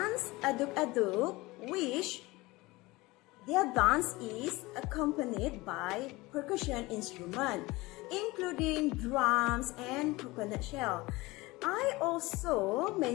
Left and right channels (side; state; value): right; quieter; 21.5 dB